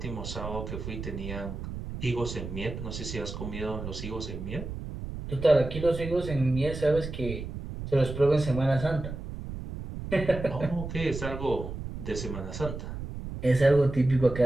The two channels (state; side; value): noise; right; rumble, 8 dB below the sound